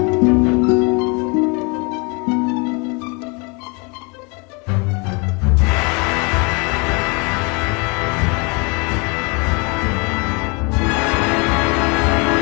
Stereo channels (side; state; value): right; quieter; 31.1 dB